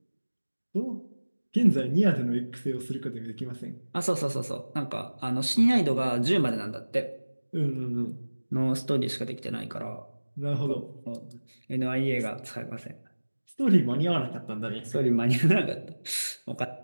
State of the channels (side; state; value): both; inverted; correlation -1.00